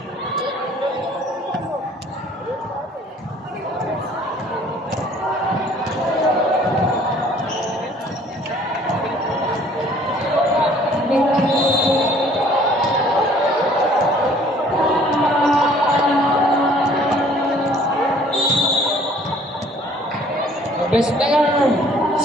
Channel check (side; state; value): both; normal; correlation 0.56